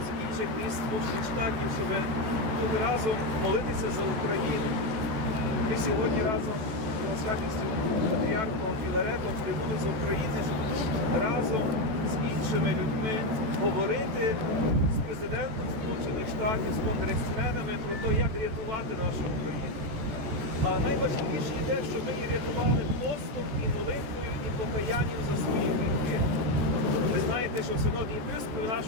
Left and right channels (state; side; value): late; left; 14 ms